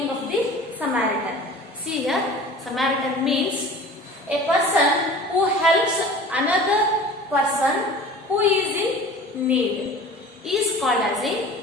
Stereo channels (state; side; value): normal; both; correlation 0.41